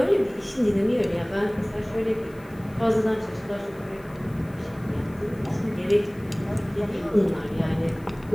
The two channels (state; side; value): noise; left; hiss, 28 dB below the sound